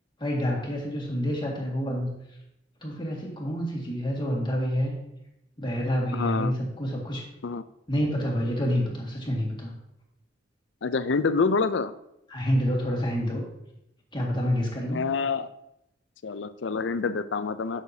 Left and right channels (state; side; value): normal; both; correlation 0.57